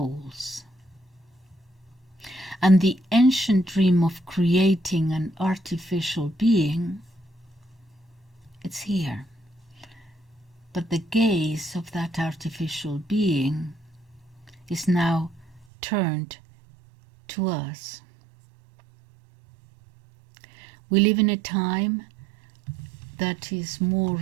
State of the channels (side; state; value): left; drops out; at 15.7 s